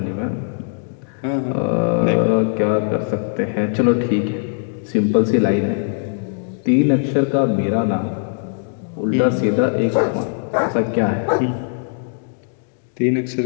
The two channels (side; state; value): right; silent; digital silence